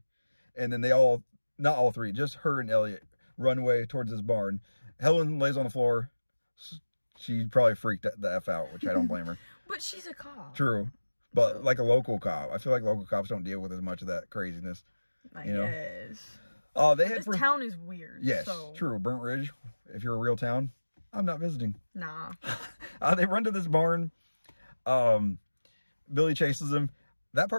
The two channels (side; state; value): both; inverted; correlation -1.00